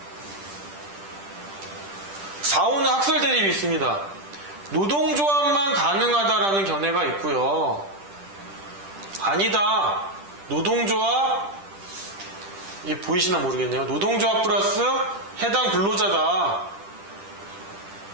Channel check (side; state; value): left; late; 10 ms